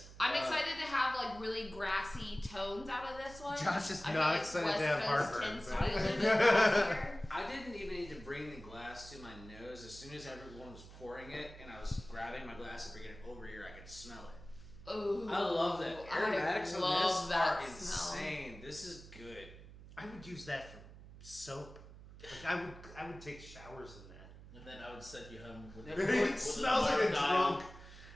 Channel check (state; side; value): noise; right; hum, 17 dB below the sound